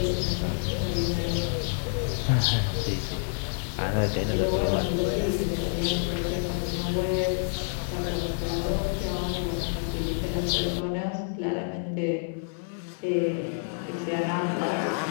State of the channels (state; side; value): silent; right; 59 dB below the other